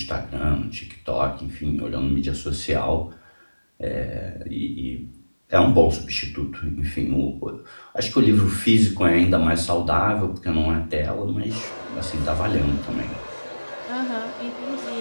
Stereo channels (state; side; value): inverted; both; correlation -1.00